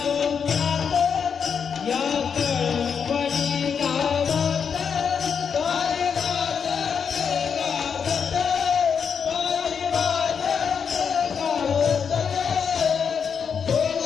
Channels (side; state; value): right; quieter; 6.7 dB